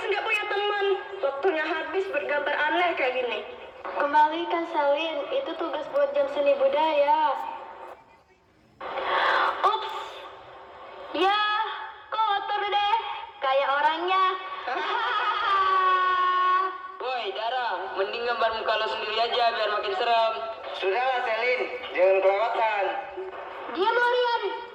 nggak punya teman. Waktunya habis bergambar aneh kayak gini. Kembalikan Selin, itu tugas buat jam seni budaya. Ups, ya kotor deh, kayak orangnya. Woi Dara, mending gambar muka lo sendiri aja biar makin serem. Sudahlah Selin, jangan kelewatan. Diam kalian,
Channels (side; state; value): both; identical; correlation 1.00